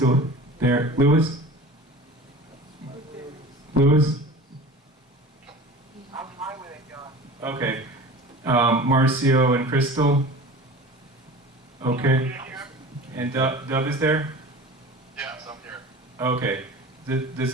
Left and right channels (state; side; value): normal; both; correlation 0.38